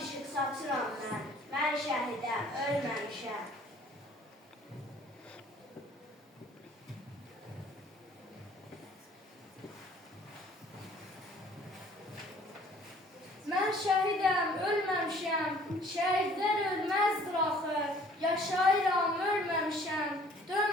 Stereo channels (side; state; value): both; normal; correlation 0.55